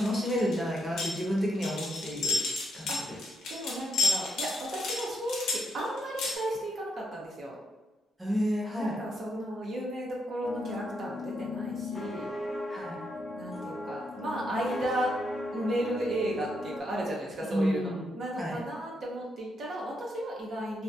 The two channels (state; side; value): normal; both; correlation 0.77